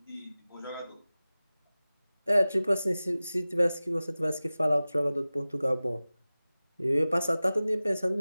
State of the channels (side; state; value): both; inverted; correlation -0.97